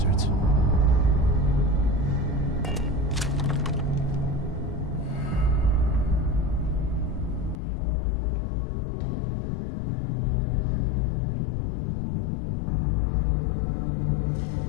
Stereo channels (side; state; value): right; drops out; at 7.6 s